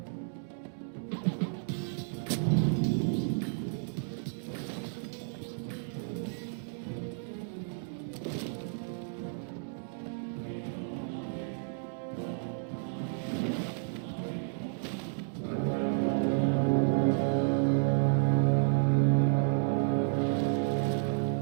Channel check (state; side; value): silent; left; digital silence